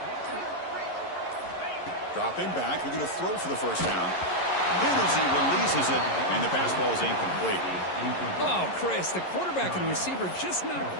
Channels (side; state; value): right; late; 11 ms